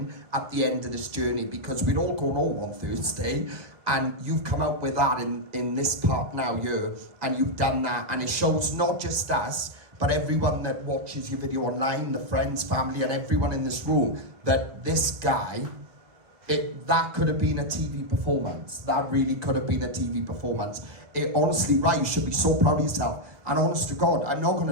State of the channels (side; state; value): left; late; 1.3 ms